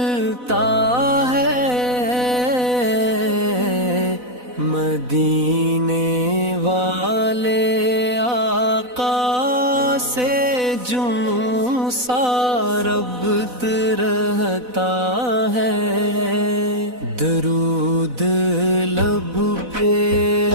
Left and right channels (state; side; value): late; left; 4.0 ms